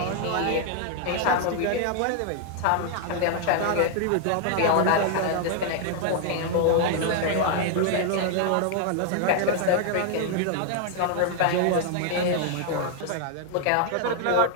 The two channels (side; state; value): both; different; correlation 0.00